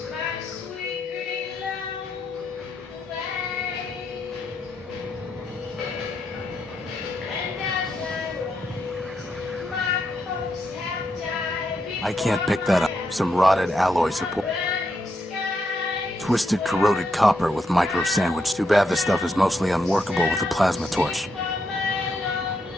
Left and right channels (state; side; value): normal; both; correlation 0.81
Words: I can't pick that up. Some rotted alloy support. Twisted, corroded copper with micro sandwich. Too bad this stuff is mostly unworkable with a plasma torch.